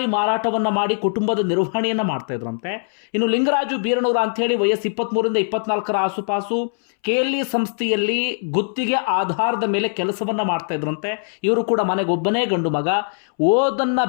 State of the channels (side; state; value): right; silent; 65 dB below the other